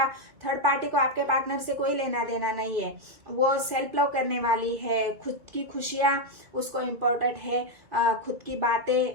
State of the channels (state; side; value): late; left; 2.2 ms